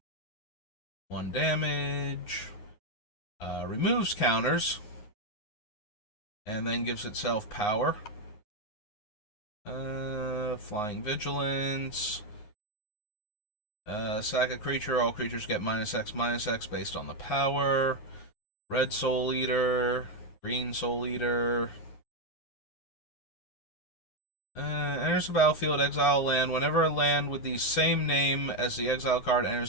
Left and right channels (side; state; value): right; late; 9.6 ms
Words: 1 damage. Removes counters. And then gives itself power. Flying Vigilance. Sack a creature. All creatures get -X/-X based on the power. Red Soul Eater. Green Soul Eater. Enters the battlefield, exile a land. Whenever a land with the same name as the exile card